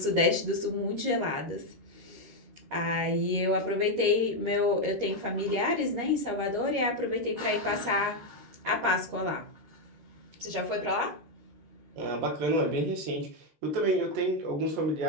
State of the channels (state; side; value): late; left; 13 ms